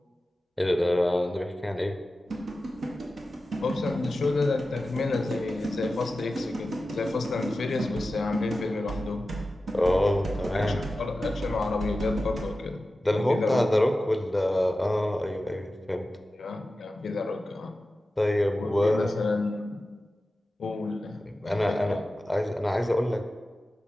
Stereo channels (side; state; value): both; normal; correlation 0.94